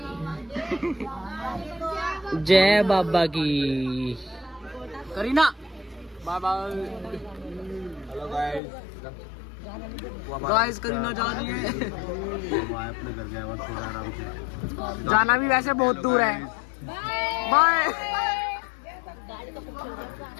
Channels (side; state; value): right; drops out; at 8.6 s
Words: जय बाबा की। Kareena bye bye. Hello guys, Kareena जा रही है। अपने घर गया हुआ थोड़ा आराम से। जाना भी वैसे बहुत दूर है। बाय।